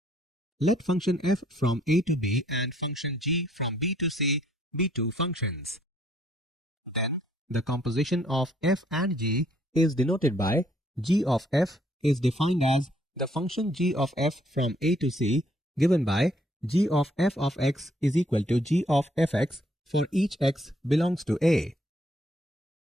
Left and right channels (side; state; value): both; normal; correlation 0.66